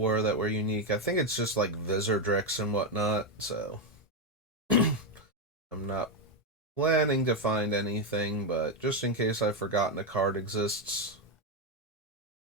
that were unique. I think it's just like Visordrix and whatnot, so I'm not planning to find anything, but just in case I've forgotten a card exists,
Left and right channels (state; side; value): normal; both; correlation 0.06